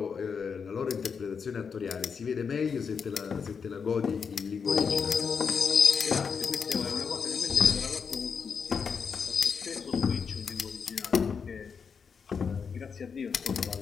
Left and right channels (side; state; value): right; quieter; 6.1 dB